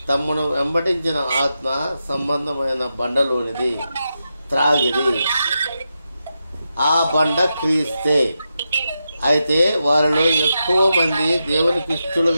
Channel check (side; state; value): both; inverted; correlation -0.87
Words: తమను వెంబడించిన ఆత్మ సంబంధమైన బండలోనిది త్రాగిరి. ఆ బండ క్రీస్తే. అయితే వారిలో ఎక్కువ మంది దేవునికి